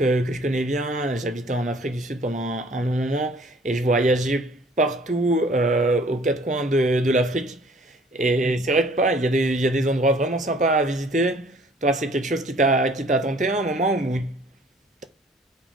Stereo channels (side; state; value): both; normal; correlation 0.55